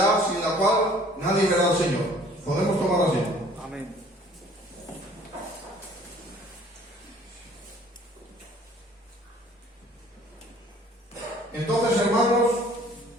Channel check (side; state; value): both; normal; correlation 0.54